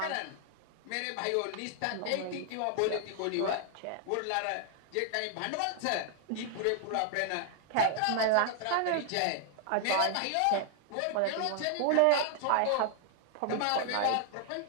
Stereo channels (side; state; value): both; different; correlation 0.00